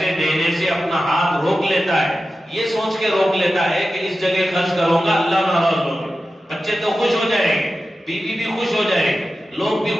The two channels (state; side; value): normal; both; correlation 0.93